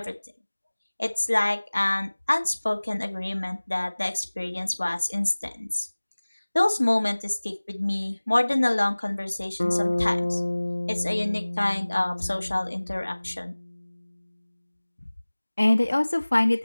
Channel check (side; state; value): both; inverted; correlation -1.00